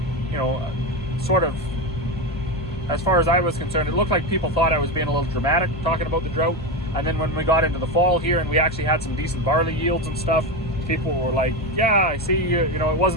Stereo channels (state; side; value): noise; left; hum, 11 dB below the sound